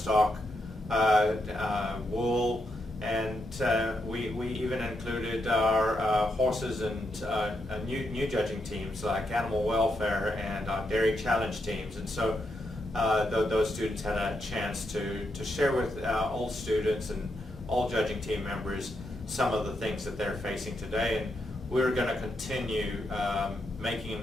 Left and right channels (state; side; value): normal; both; correlation 0.82